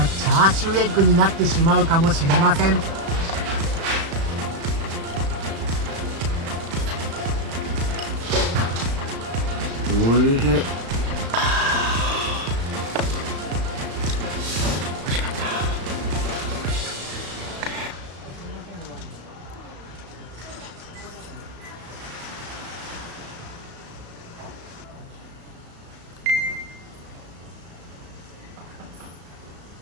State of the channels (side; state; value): left; late; 35 ms